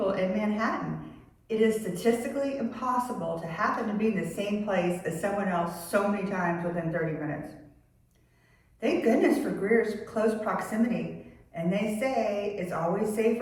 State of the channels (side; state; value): both; identical; correlation 1.00